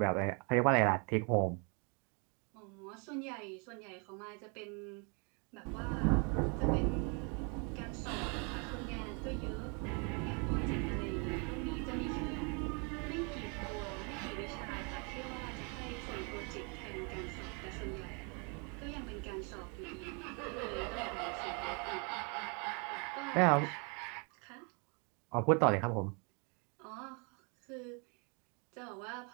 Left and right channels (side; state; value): left; quieter; 34.9 dB